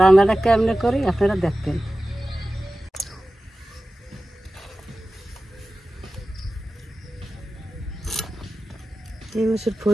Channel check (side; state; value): both; normal; correlation 0.95